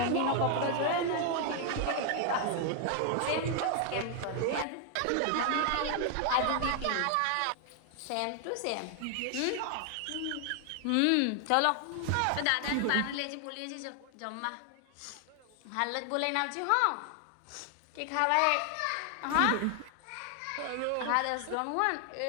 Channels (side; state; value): both; different; correlation 0.00